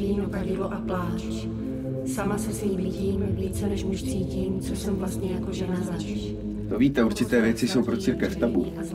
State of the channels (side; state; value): both; identical; correlation 1.00